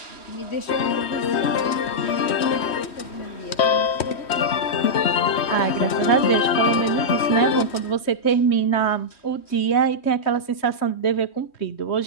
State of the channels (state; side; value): late; right; 3.1 ms